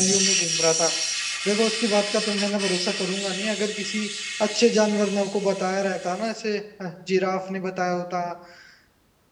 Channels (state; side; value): identical; both; correlation 1.00